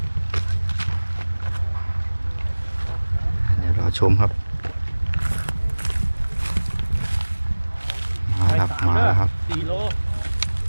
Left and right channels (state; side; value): inverted; both; correlation -1.00